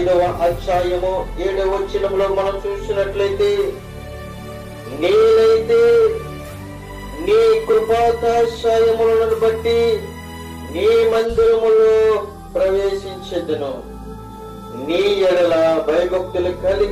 అధ్యాయము 7వ వచనంలో మనం చూసినట్లయితే, నేనైతే నీ కృపాకటాక్షములను బట్టి నీ మందిరములో ప్రవేశించెదను, నీ ఎడల భయభక్తులు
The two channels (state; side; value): identical; both; correlation 1.00